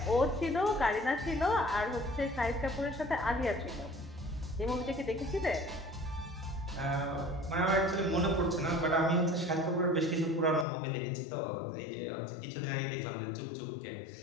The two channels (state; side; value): drops out; right; at 10.7 s